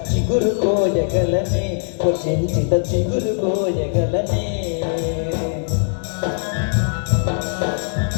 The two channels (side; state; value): right; silent; digital silence